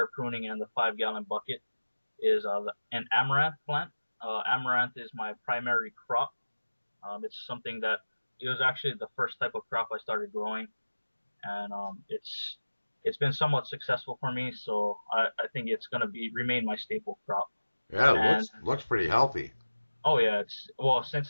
pruning and the 5 gallon bucket, is an amaranth plant. Amaranth is my primary crop. It's something that it was actually the first type of crop I started growing, and it's been somewhat successful for me. So I think it's gonna be remain my staple crop. Yeah, it And looks pretty healthy. oh yeah, it's well since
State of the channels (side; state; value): both; inverted; correlation -1.00